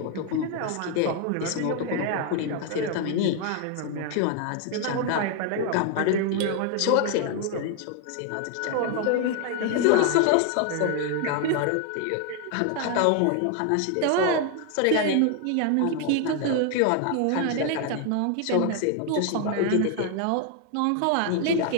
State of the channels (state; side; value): different; both; correlation 0.00